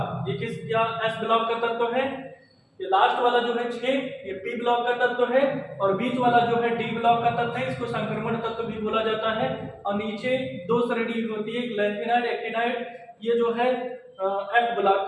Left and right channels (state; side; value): identical; both; correlation 1.00